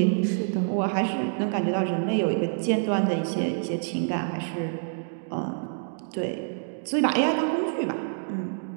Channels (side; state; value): left; silent; digital silence